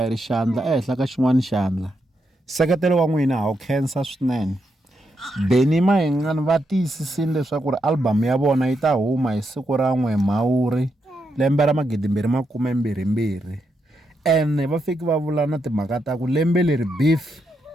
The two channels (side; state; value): both; normal; correlation 0.82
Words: ri xandla ehenhla ka xin'wana xandla. Nseketelo wa n'wina ha wu khensa swinene. Benny Mayengani va tiyisisile leswaku ri album ya vona yi ta huma hi siku ra 1 Mhawuri lembe ra 2022. Ene va fiki va vula na timhaka ta ku lembe leri beef